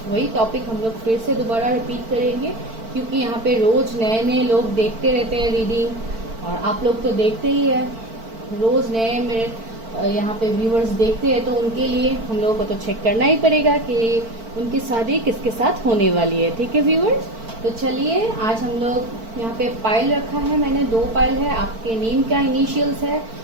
वही टॉपिक हम लोग फिर से दोबारा रिपीट करेंगे, क्योंकि यहाँ पे रोज नए नए लोग देखते रहते हैं रीडिंग, और आप लोग तो देखते ही है, रोज नए मेरे यहाँ पे व्यूअर्स देखते हैं, तो उनके लिए हम लोगों को तो चेक करना ही पड़ेगा कि उनकी शादी किसके साथ होने वाली है। ठीक है व्यूअर्स, तो चलिए आज हम लोग यहाँ पे पाइल रखा है मैंने, 2 पाइल है, आपके नेम का इनिशियल्स है,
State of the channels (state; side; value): late; left; 4.5 ms